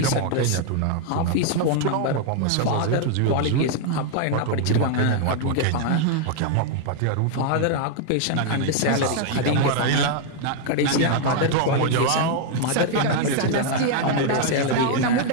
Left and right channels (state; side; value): different; both; correlation 0.00